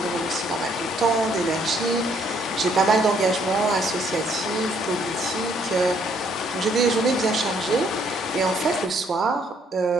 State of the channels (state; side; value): normal; both; correlation 0.67